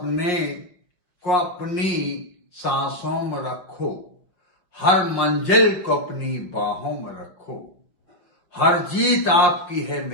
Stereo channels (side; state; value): right; late; 5.7 ms